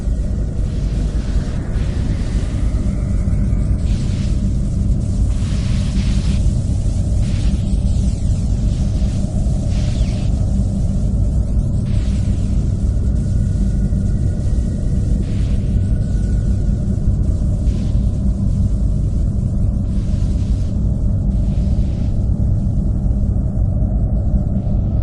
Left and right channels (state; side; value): identical; both; correlation 1.00